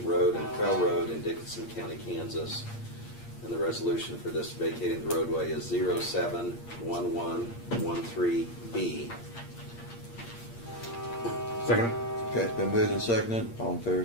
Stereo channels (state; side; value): late; right; 8.6 ms